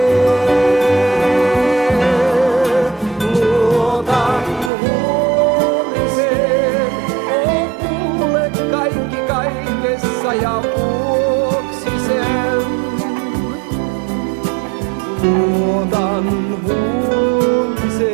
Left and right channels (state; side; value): drops out; left; at 4.7 s